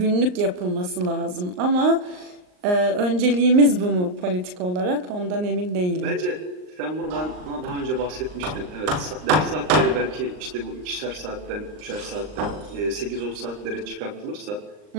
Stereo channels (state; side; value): late; left; 39 ms